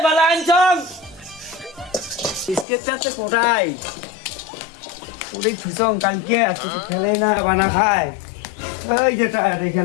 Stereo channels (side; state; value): right; drops out; at 2.7 s